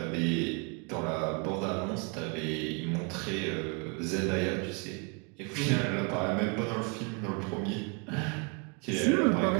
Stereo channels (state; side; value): quieter; left; 33.7 dB